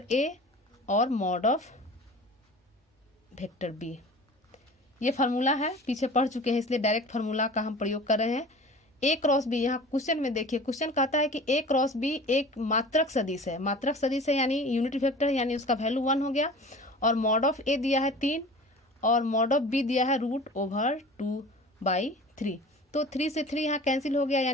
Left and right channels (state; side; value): normal; both; correlation 0.40